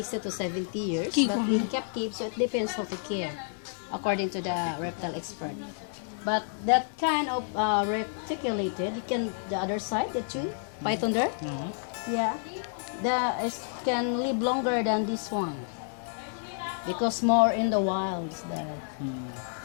to 70 years. Keep But on. in captive, so it depends how to care, according to the reptile expert. But that kind of reticulated, you can the other side, the tree python there. Yeah, can live longer than this one because more in the wilds there.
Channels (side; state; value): right; silent; 58 dB below the other